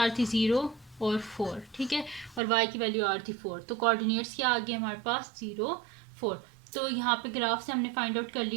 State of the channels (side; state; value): left; drops out; at 2.4 s